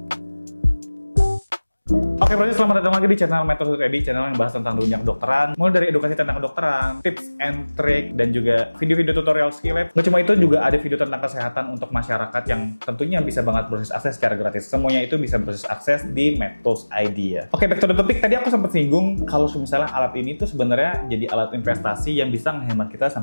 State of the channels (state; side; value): inverted; both; correlation -1.00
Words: Oke, berarti selamat datang lagi di channel Metode.ed, channel yang bahas tentang dunia kedokteran, mulai dari edukasi tentang kedokteran, tips and trick, dan juga video-video tutorial skill lab. Nggak cuma itu, juga ada video tentang kesehatan untuk masyarakat yang tentunya bisa banget berbasis akses secara gratis. Semuanya itu bisa berbasis akses di Metode.id ya. Oke, back to the topic. Tadi aku sempat singgung kalau misalnya alat ini tuh sebenarnya jadi alat investasi yang bisa menghemat kita